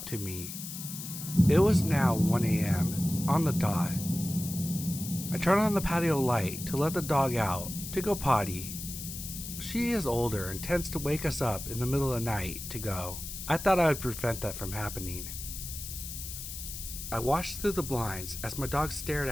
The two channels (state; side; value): noise; left; hiss, 9 dB below the sound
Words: to me. It was now 1 a.m. on the dot. I turned on the patio light to let the dog out to go potty. She is older and tends to wake us up in the middle of the night to go. I thought I would prevent that from happening. I watched through the blinds as my dog stared